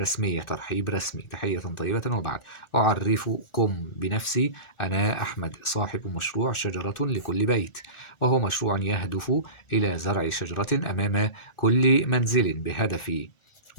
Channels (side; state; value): right; late; 1.4 ms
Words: ترحيب رسمي، تحية طيبة وبعد. أعرفكم بنفسي، أنا أحمد، صاحب مشروع شجرة لكل بيت، وهو مشروع يهدف إلى زرع شجرة أمام كل منزل بهدف،